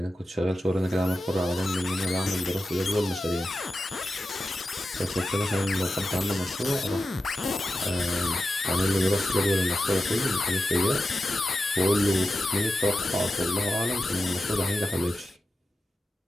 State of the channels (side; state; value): both; normal; correlation 0.91